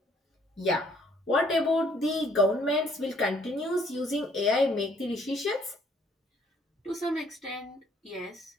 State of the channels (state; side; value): normal; both; correlation 0.64